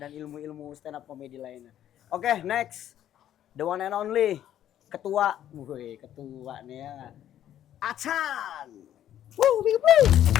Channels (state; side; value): quieter; right; 11.3 dB